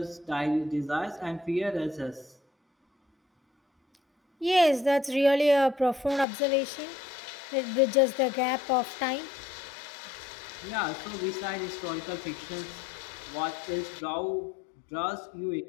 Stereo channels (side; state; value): right; drops out; at 6.2 s